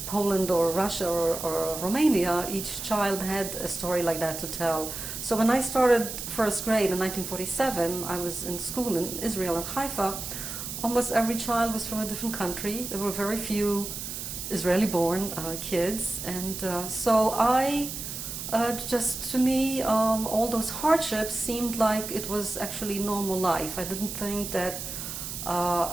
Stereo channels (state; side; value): noise; right; hiss, 7 dB below the sound